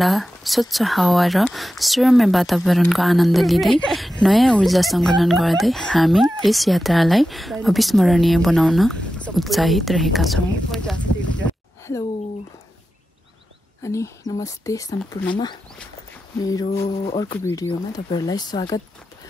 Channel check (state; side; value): normal; both; correlation 0.92